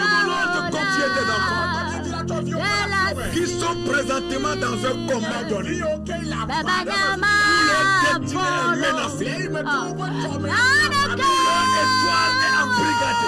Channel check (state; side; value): identical; both; correlation 1.00